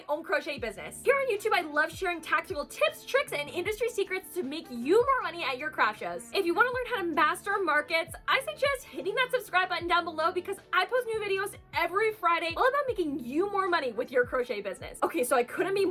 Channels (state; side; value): identical; both; correlation 1.00